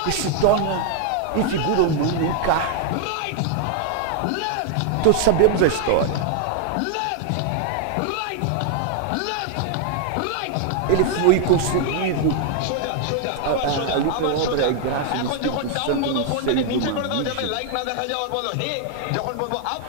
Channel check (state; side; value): different; both; correlation 0.00